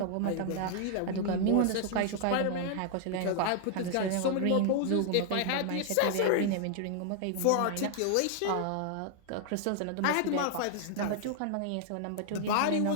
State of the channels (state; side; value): different; both; correlation 0.00